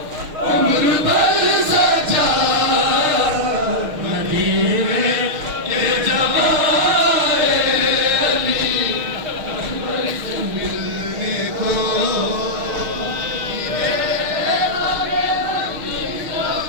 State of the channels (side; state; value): left; late; 6.4 ms